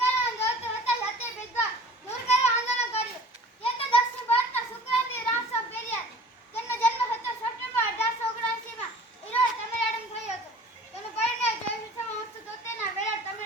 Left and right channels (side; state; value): both; normal; correlation 0.45